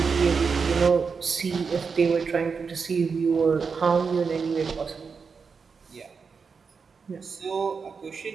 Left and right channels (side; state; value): left; quieter; 5.4 dB